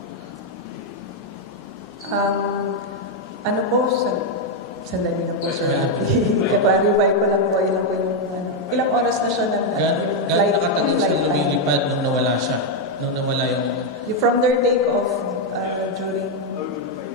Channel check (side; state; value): both; normal; correlation 0.01